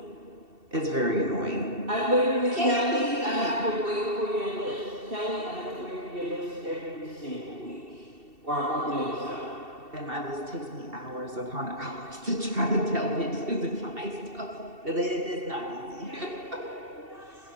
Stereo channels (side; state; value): left; late; 2.7 ms